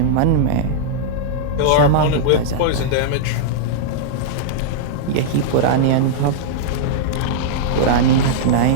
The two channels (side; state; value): both; different; correlation -0.02